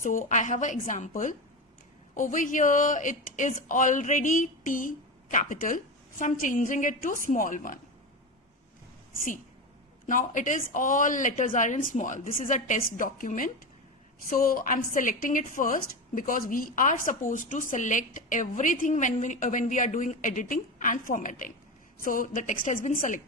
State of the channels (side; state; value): both; normal; correlation 0.20